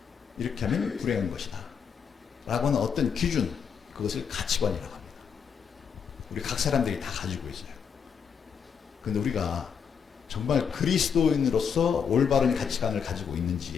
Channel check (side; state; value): right; quieter; 7.0 dB